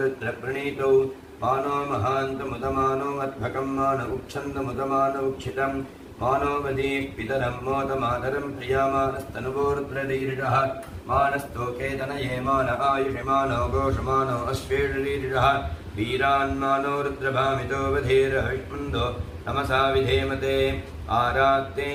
मानो महान्तमुदमानो अध्वकं मान उक्षन्दमुदमानौक्षितम् मानो वदीः पितरं मोदमातरं प्रियामानस्तनुवोरुद्ररीरिषः मानस्तोकेतनये मान आयुषमानो घोषमानो अश्वेषरीरिषः वीरान्मानो रुद्रभामितो वधीरविष्मन्दो नमसा विधेमते आरात्ते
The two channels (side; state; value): both; identical; correlation 1.00